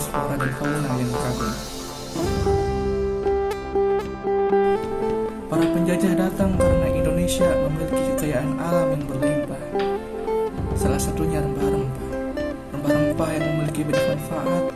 flora dan fauna yang beragam. Para penjajah datang karena Indonesia memiliki kekayaan alam yang berlimpah. Salah satunya rempah-rempah. Rempah-rempah yang memiliki banyak manfaat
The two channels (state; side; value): identical; both; correlation 1.00